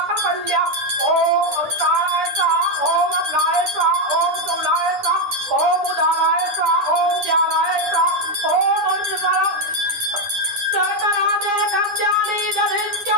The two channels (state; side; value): late; left; 9.7 ms